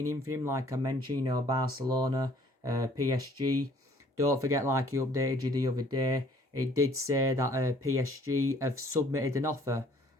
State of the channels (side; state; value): both; normal; correlation 0.58